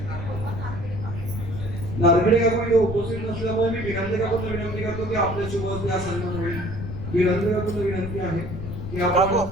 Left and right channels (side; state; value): left; noise; rumble, 7 dB below the sound